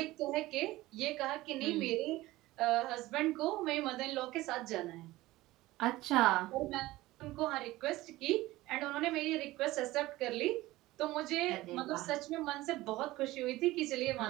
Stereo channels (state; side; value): quieter; left; 18.0 dB